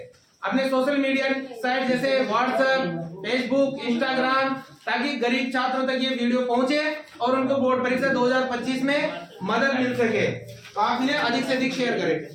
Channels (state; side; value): identical; both; correlation 1.00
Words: अपने सोशल मीडिया साइट जैसे व्हाट्सएप, फेसबुक, इंस्टाग्राम, ताकि गरीब छात्रों तक ये वीडियो पहुंचे और उनको बोर्ड परीक्षा 2025 में मदद मिल सके। तो आप इन्हें अधिक से अधिक शेयर